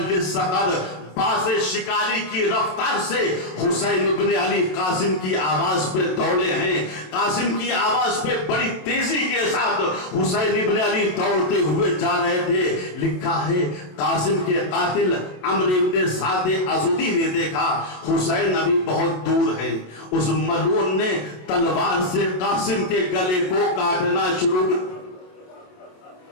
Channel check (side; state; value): right; late; 27 ms